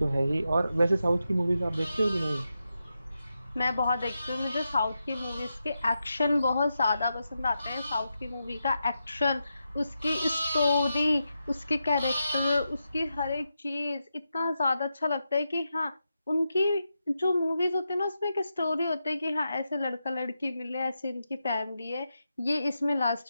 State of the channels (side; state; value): both; inverted; correlation -0.87